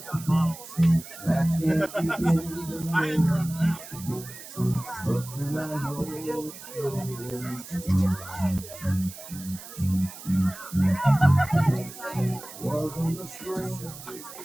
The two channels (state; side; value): noise; right; hiss, 14 dB below the sound